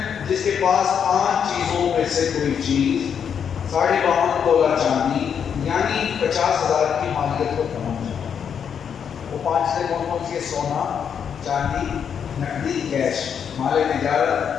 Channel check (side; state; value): right; quieter; 7.6 dB